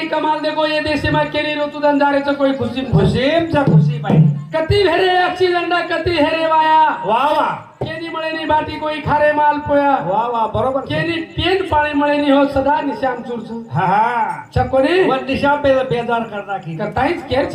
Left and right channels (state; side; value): identical; both; correlation 1.00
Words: कमाल देखो ये देश में केली ऋतू धंदारेचं कोई खुशी खुशीमचा खुशी बाई कति हेरे एक्सीडेंट कति हेरे वाया वाह वाह केनी मळे नी बाटी कोई खारे माल पोया वाह वाह बरोबर केनी पेन पाणी मळे नी हो सदा निशाम चुरचु हा हा चकोनी वन दिशा पे बेजार करना की कताईच केर